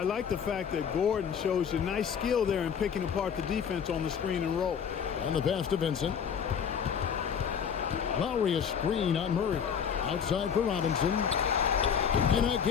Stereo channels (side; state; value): right; quieter; 7.4 dB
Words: like the fact that Gordon shows you nice skill there in picking apart the defense on the screen and roll. And the pass to Vincent. Lowry a screen on Murray. Outside for Robinson. And